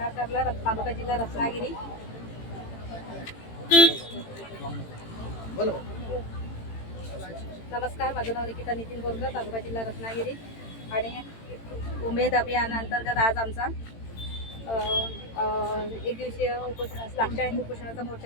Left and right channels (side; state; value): right; late; 18 ms